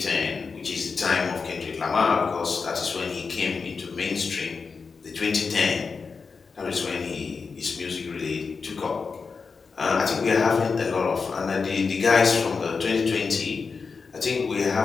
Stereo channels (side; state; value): right; quieter; 5.0 dB